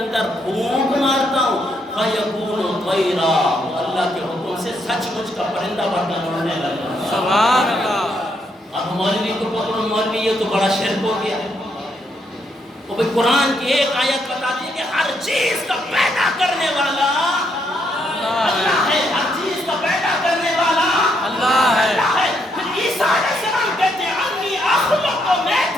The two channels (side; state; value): both; normal; correlation 0.75